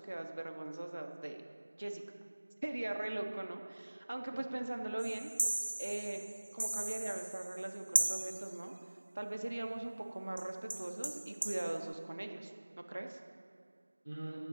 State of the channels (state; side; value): inverted; both; correlation -1.00